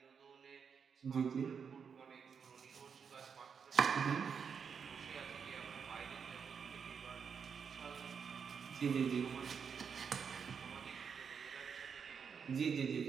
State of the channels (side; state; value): left; quieter; 6.5 dB